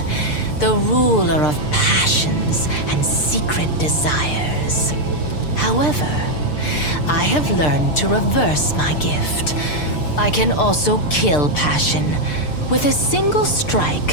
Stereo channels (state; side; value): late; right; 6.7 ms